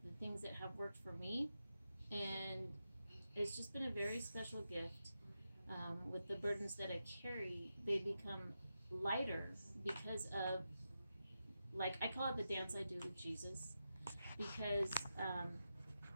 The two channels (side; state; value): both; inverted; correlation -0.89